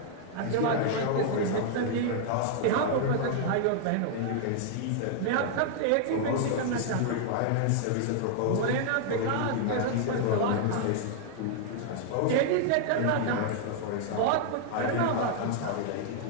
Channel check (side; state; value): both; different; correlation -0.01